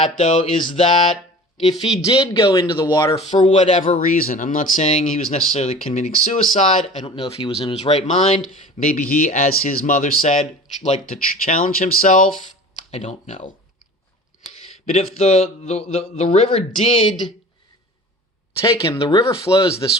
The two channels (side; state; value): both; normal; correlation 0.40